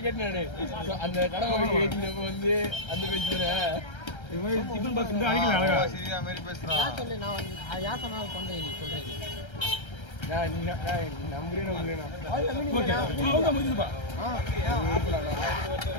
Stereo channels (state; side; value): late; right; 1.3 ms